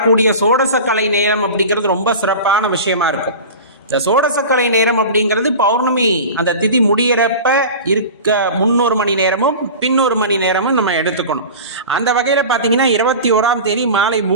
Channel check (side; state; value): both; inverted; correlation -0.33